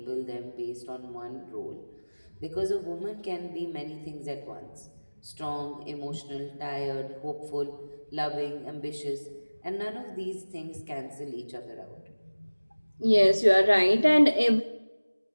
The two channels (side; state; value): both; inverted; correlation -1.00